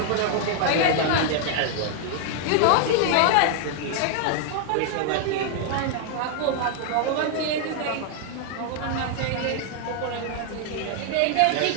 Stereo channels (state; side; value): different; both; correlation 0.00